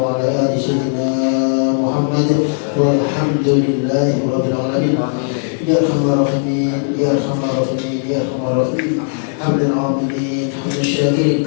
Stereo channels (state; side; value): silent; right; 68 dB below the other